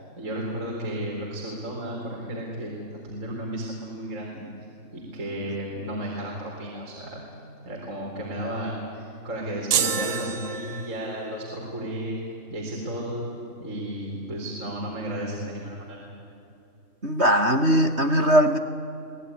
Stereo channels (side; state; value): left; late; 3.6 ms